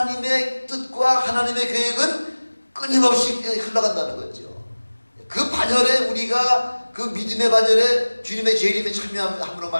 뜻과 하나님의 계획은 끊임없이 흘러간다는 거죠. 그 반열에 우리가 그 믿음의 반열에 주님의 재림에 참여함으로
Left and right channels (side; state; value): both; inverted; correlation -1.00